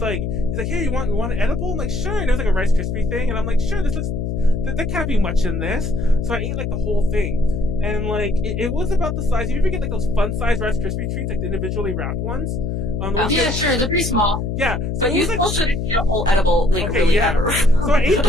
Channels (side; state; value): left; noise; hum, 2 dB below the sound